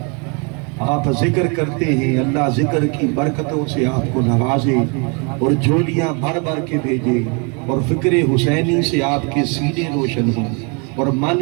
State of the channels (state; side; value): quieter; left; 33.9 dB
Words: آپ ذکر کرتے ہیں، اللہ ذکر کی برکتوں سے آپ کو نوازے اور جھولیاں بھر بھر کے بھیجے، اور فکر حسینی سے آپ کے سینے روشن ہوں، اور من